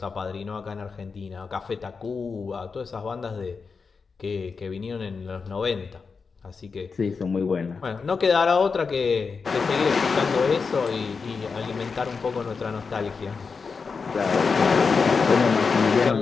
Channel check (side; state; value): right; quieter; 5.0 dB